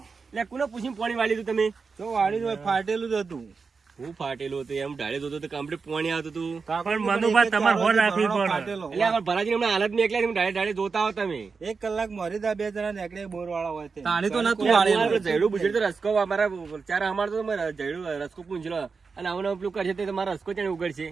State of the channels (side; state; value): left; quieter; 4.9 dB